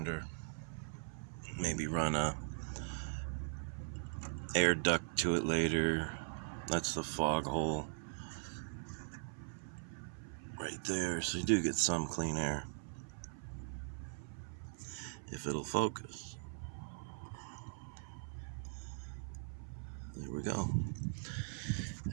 Maybe run a air duct to it later. That's the fog hole right there, so you do get some clean air if it'll focus. There we go.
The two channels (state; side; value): silent; left; 51 dB below the other